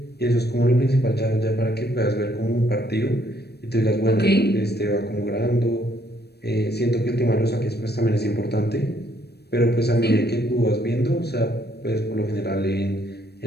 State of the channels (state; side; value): late; right; 0.47 ms